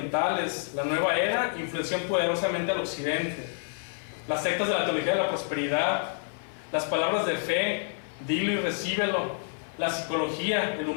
la nueva era, influenció poderosamente al occidente. Las sectas de la teología de la prosperidad, las palabras de fe, dilo y recíbelo, la psicología, el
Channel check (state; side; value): silent; right; digital silence